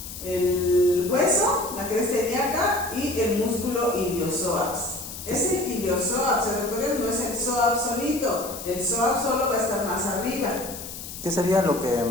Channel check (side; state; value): left; noise; hiss, 11 dB below the sound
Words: el hueso, la cresta ilíaca y el músculo iliopsoas. Ese iliopsoas, doctores, no es el psoas solito, el psoas solo va a estar más arriba. ¿Qué sería lo que